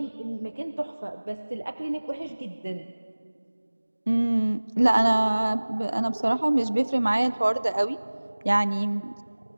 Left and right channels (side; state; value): both; inverted; correlation -1.00